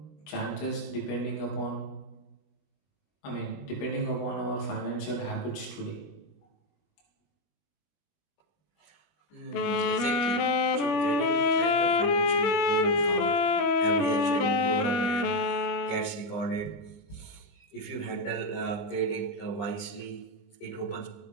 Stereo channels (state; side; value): late; right; 20 ms